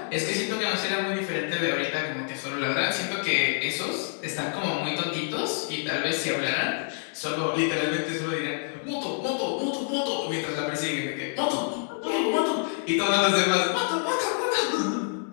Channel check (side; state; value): right; silent; 60 dB below the other